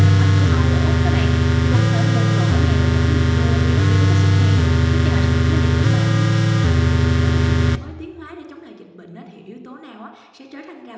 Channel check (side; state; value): both; identical; correlation 1.00